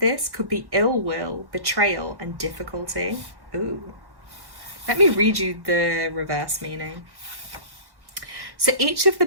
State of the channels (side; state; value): left; late; 1.1 ms